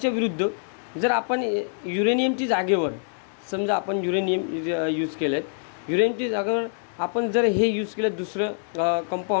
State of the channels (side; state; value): right; silent; 62 dB below the other